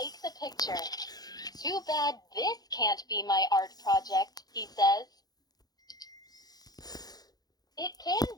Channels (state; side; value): late; right; 0.19 ms